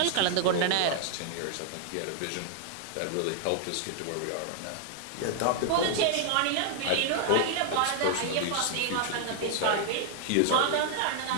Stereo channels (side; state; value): both; different; correlation -0.01